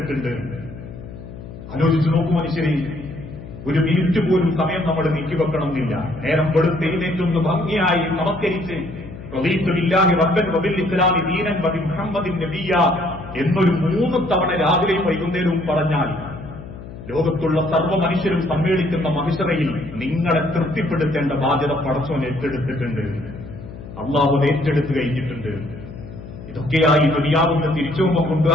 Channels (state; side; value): noise; left; hum, 14 dB below the sound